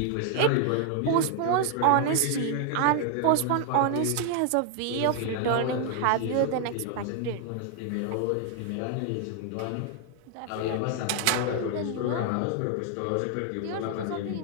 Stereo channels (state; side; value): different; both; correlation 0.00